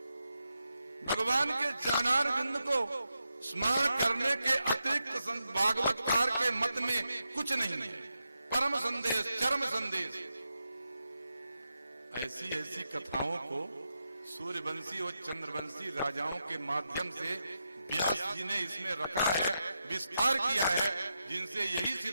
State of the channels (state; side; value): inverted; both; correlation -0.86